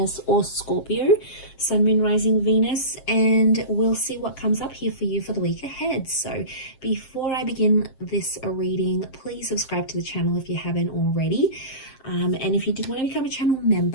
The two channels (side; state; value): right; late; 7.6 ms